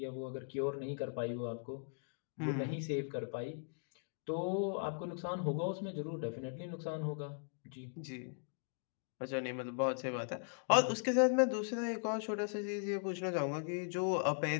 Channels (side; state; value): right; silent; digital silence